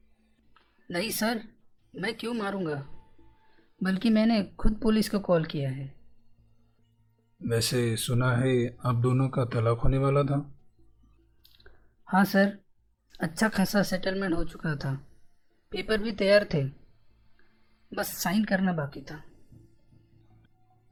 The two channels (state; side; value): identical; both; correlation 1.00